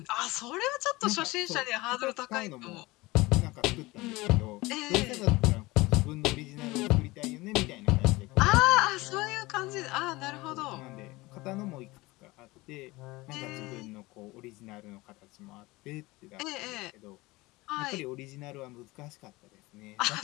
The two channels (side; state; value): right; quieter; 21.4 dB